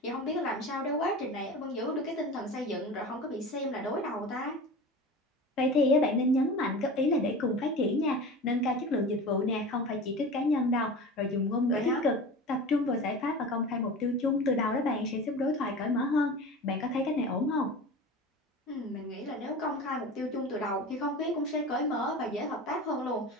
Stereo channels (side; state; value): both; normal; correlation 0.33